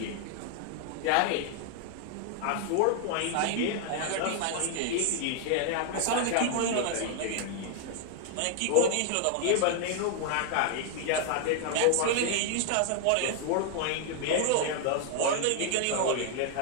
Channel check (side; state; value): both; different; correlation 0.00